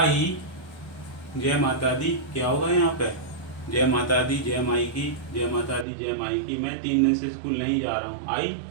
जय माता दी, क्या होगा यहाँ पे? जय माता दी, जय माई की, जय माता दी, जय माई की। मैं 3 दिन से स्कूल नहीं जा रहा हूँ। आई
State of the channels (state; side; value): drops out; left; at 5.9 s